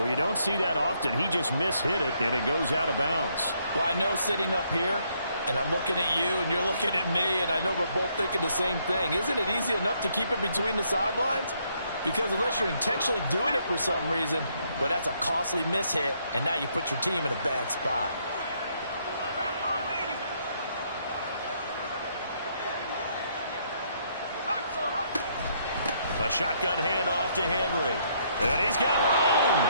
you don't see that often. He just mishit it, and it goes out of bounds. Well, I know sitting up here, and I'm looking at you, and you're looking at me, and I know we're both thinking the same thing. Isn't it easy enough to keep it between the sidelines? Because unless you're intentionally doing it for some reason, well, that's a costly mishit, and now you put your team in a bad spot. A shotgun handoff to Henry. And he's got room.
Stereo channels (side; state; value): both; inverted; correlation -0.71